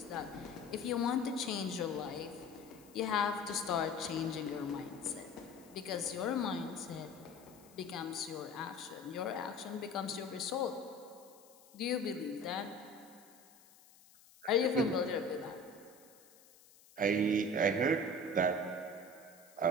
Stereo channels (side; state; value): left; noise; hiss, 24 dB below the sound